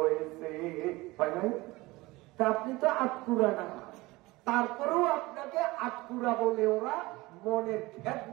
হয় নাই? তা আপনি তো আটপুরা না, তারপরেও আপনাকে আটপুরা বলে ওরা মনের ভেদ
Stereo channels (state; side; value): quieter; left; 21.1 dB